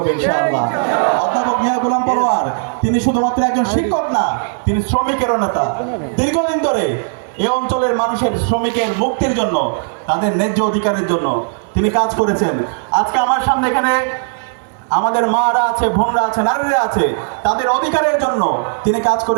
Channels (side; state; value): left; silent; 68 dB below the other